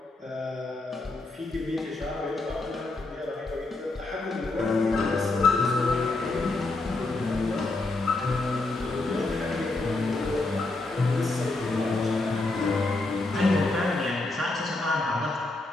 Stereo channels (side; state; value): right; quieter; 3.1 dB